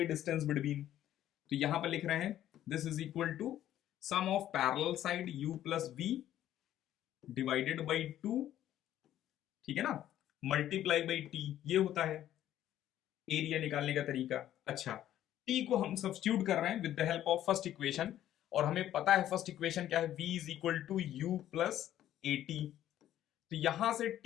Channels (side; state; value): right; quieter; 12.2 dB